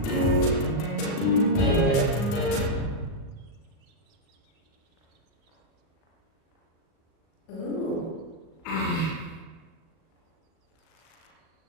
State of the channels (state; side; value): late; right; 38 ms